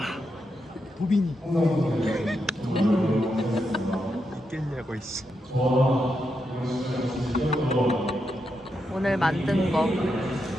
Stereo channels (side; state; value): both; normal; correlation 0.84